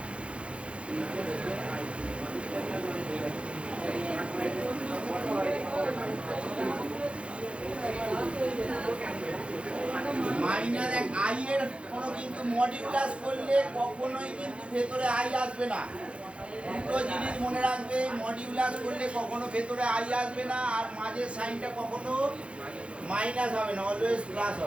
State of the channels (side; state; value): left; late; 0.059 ms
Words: মাইনাস এক আই এর কোনো কিন্তু মডিউলাস করলে কখনোই কিন্তু ভেতরে আই আসবে না। দুটো জিনিস মনে রাখবে, মডিউলাস করলে কখনো ভেতরে আই আসবে না, আর মাঝের সাইনটা কখনো মাইনাস হবে না, অলওয়েজ প্লাস